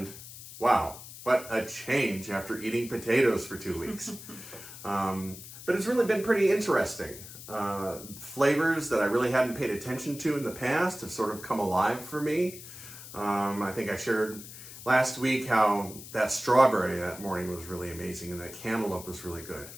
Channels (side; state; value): left; noise; hiss, 14 dB below the sound